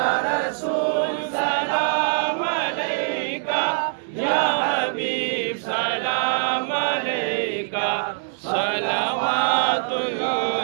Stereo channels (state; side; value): silent; left; digital silence